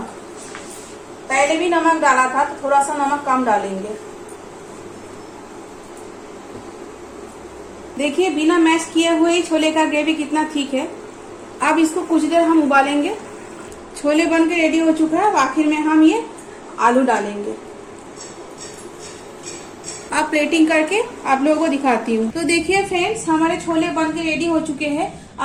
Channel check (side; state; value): both; identical; correlation 1.00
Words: पहले भी नमक डाला था तो थोड़ा सा नमक कम डालेंगे। देखिए बिना मैश किए हुए ही छोले का ग्रेवी कितना ठीक है। अब इसको कुछ देर हम उबालेंगे। छोले बन के रेडी हो चुका है। अब आखिर में हम ये आलू डालेंगे। अब प्लेटिंग करके आप लोगों को दिखाती हूँ। तो देखिए फ्रेंड्स, हमारे छोले बन के रेडी हो चुके हैं।